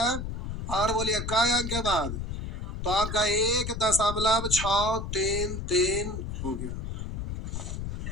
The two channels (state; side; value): noise; left; rumble, 5 dB below the sound